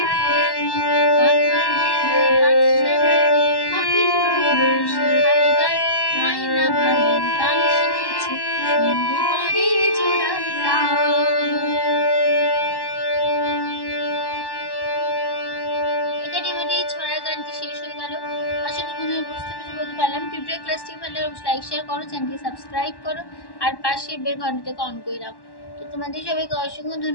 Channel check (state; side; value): late; right; 1.1 ms